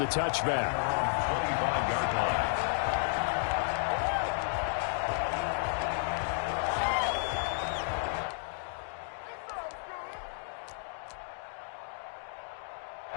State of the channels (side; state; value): right; silent; digital silence